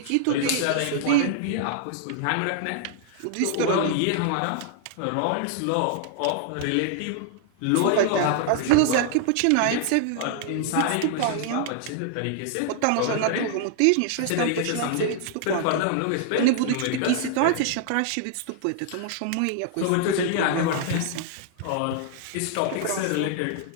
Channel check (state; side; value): different; both; correlation 0.00